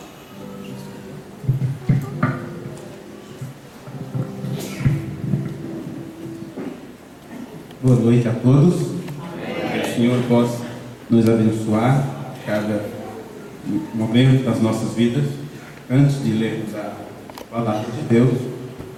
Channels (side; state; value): both; identical; correlation 1.00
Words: Boa noite a todos. Que o Senhor possa nos abençoar cada momento das nossas vidas. Antes de lermos a palavra de Deus,